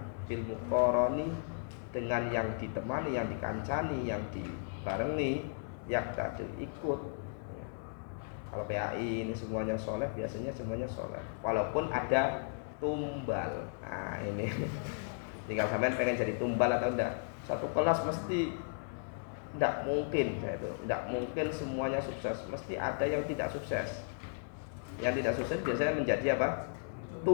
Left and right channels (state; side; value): silent; right; digital silence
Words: bil muqarani, dengan yang ditemani, yang dikancani, yang dibarengi, yaktadu, ikut. Kalau PAI ini semuanya soleh, biasanya semuanya soleh, walaupun ada tumbal. Nah ini tinggal sampean pengen jadi tumbal atau enggak. Satu kelas mesti enggak mungkin, saya itu enggak mungkin semuanya sukses, mesti ada yang tidak sukses. Yang tidak sukses biasanya menjadi apa?